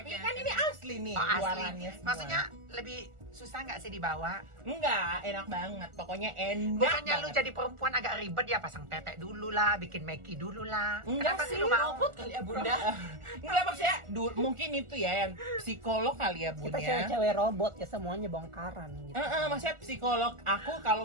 Oke. kan ini asli nih oh, asli. luarannya semua. Maksudnya lebih susah nggak sih dibawa? Enggak, enak banget, pokoknya enak Bukannya lu banget. jadi perempuan agak ribet ya, pasang tetek dulu lah, bikin meki dulu lah. Enggak Kenapa sih, lu mau? Robot kali ya Bunda. Enggak maksudnya, mungkin itu ya yang psikolog kali ya Bun Kita ya. cewek-cewek robot ya, semuanya bongkaran gitu. Maksudnya psikolog aku kalau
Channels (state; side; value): late; left; 1.4 ms